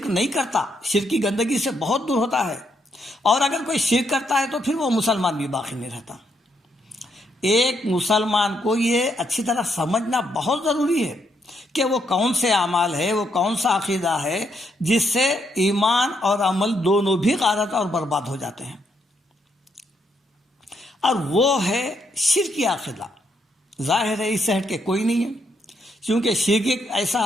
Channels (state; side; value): normal; both; correlation 0.76